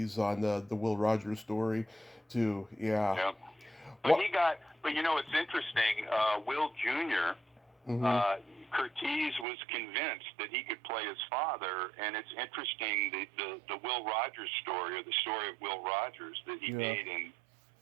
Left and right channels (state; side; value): drops out; left; at 9.5 s